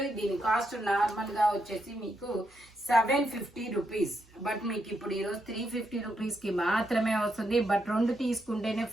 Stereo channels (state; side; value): noise; right; hum, 29 dB below the sound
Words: దీని కాస్ట్ నార్మల్ గా వచ్చేసి మీకు 750 రూపీస్, బట్ మీకు ఇప్పుడు ఈరోజు 350 రూపీస్ కి మాత్రమే వస్తుంది. బట్ 2 తీసుకుంటేనే